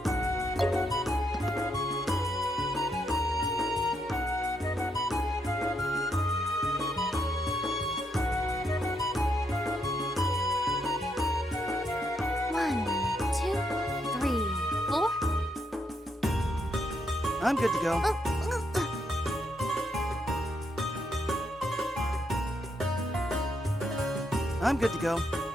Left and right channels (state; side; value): normal; both; correlation 0.78